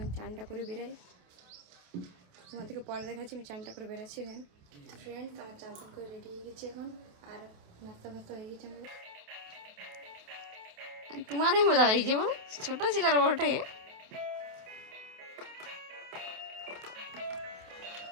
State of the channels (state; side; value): late; left; 28 ms